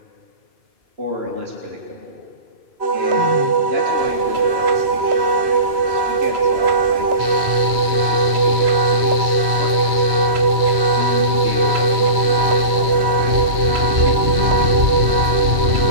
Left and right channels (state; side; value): late; left; 2.3 ms